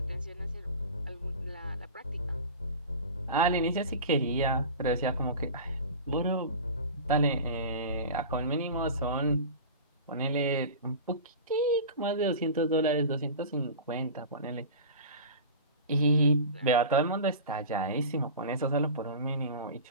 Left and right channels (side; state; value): both; inverted; correlation -0.33